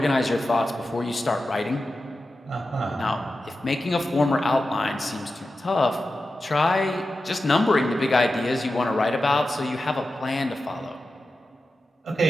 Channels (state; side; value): normal; both; correlation 0.92